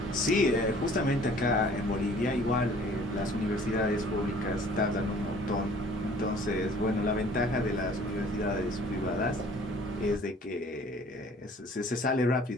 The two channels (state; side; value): normal; both; correlation 0.53